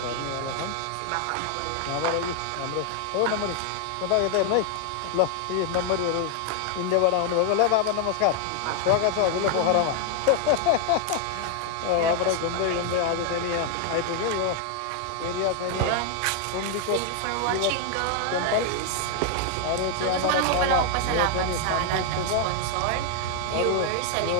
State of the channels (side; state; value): both; different; correlation 0.00